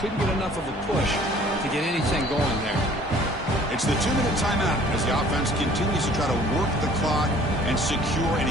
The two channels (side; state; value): both; normal; correlation 0.53